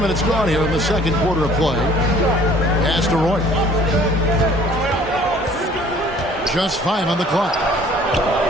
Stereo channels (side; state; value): both; normal; correlation 0.54